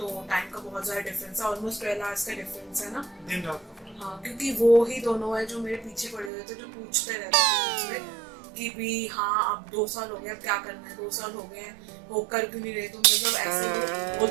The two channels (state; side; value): drops out; left; at 6.3 s